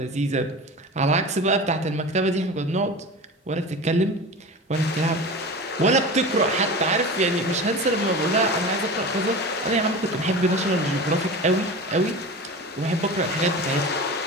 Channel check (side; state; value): both; normal; correlation 0.31